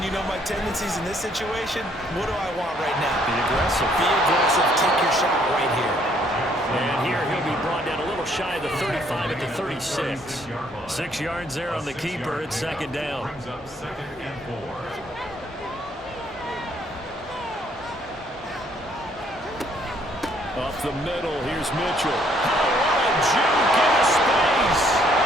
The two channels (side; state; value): both; normal; correlation 0.66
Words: you know my tendencies in this situation. What do I want right now? Be aggressive. Be aggressive. Take your shot right here. And here he'll be brought down a little shy of the 35 at the 36. 6 yards there on the keeper. It's 2nd down. Brings up 2nd and 4. Up the middle, here's Mitchell. Oh, what a juke into space.